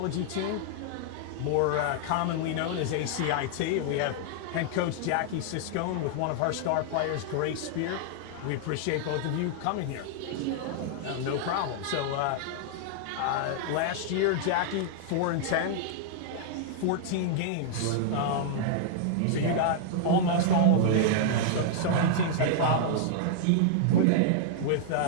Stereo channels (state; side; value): different; both; correlation -0.01